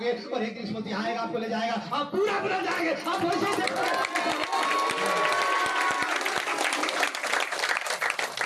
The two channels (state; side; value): identical; both; correlation 1.00